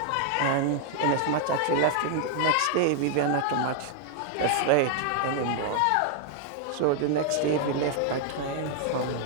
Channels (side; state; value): both; different; correlation 0.00